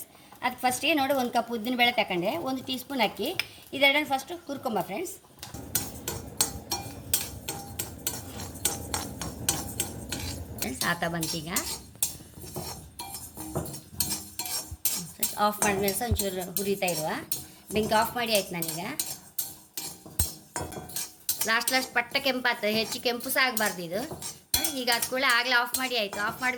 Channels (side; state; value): both; identical; correlation 1.00